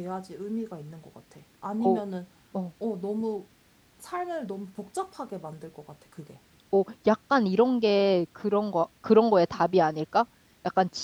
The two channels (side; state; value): both; identical; correlation 1.00